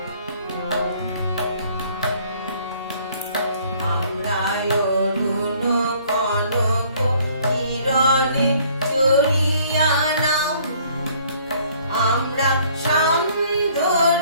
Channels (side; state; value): both; inverted; correlation -0.59